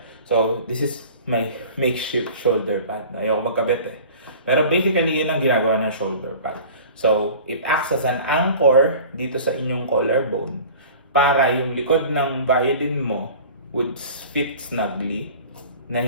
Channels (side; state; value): both; inverted; correlation -0.42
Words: So this is my makeshift shoulder pad. Ayoko magkabit eh. Pero basically, yun ang ginagawa ng shoulder pad. So, it acts as an anchor dito sa inyong collarbone para yung likod ng violin mo would fit snugly na